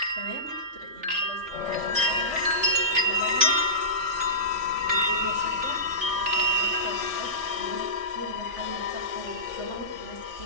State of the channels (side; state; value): left; late; 3.4 ms